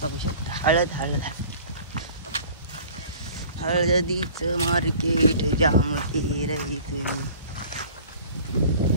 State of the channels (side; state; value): both; inverted; correlation -0.46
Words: बघू शकता. हळद हळदीचं मार्केट जाम रही तुम्ही.